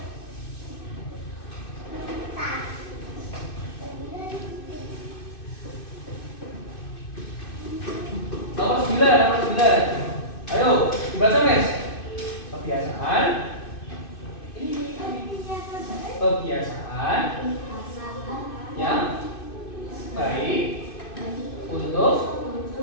Nomor 9. Ayo, dibaca Mes. Kebiasaan yang baik untuk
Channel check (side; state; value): right; late; 2.6 ms